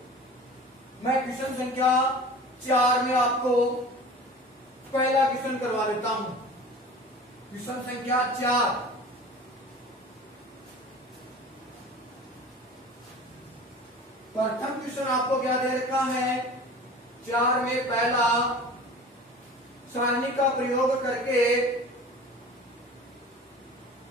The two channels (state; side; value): normal; both; correlation 0.39